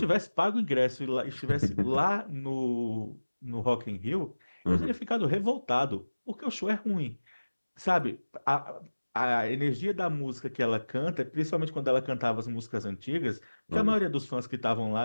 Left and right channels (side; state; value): both; inverted; correlation -1.00